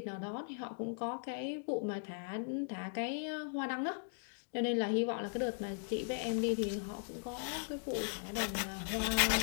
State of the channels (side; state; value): right; silent; digital silence